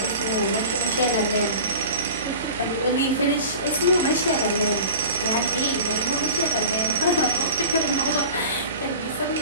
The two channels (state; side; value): inverted; both; correlation -0.37